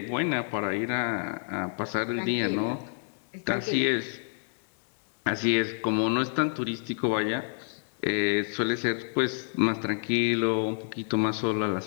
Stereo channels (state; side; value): silent; right; digital silence